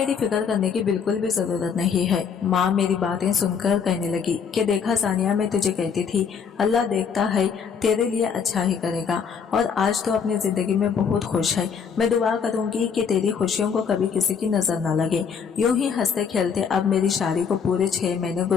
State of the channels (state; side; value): quieter; right; 6.6 dB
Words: फिक्र करने की बिल्कुल भी जरूरत नहीं है। माँ मेरी बातें सुनकर कहने लगी कि देखा सानिया, मैं तुझे कहती थी अल्लाह देखता है, तेरे लिए अच्छा ही करेगा और आज तो अपनी जिंदगी में बहुत खुश है। मैं दुआ करूंगी कि तेरी खुशियों को कभी किसी की नजर न लगे। यूं ही हंसते खेलते अब मेरी शादी को पूरे 6 महीने